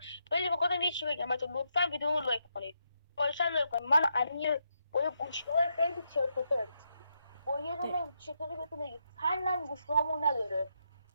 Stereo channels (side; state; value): both; inverted; correlation -0.81